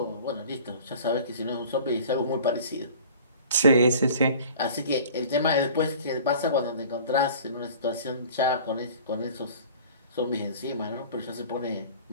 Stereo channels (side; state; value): both; inverted; correlation -0.44